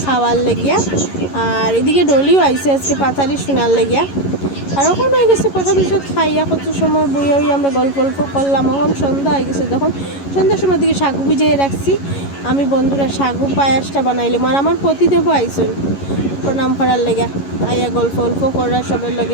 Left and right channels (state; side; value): late; right; 11 ms